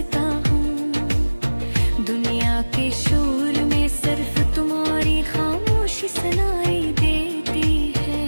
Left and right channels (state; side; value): inverted; both; correlation -1.00